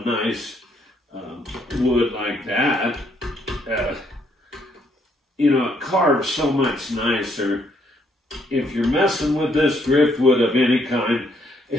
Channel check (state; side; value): normal; both; correlation 0.71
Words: nice wood like that, you know, it carves so much nicer. If you're messing with this driftwood of any kind,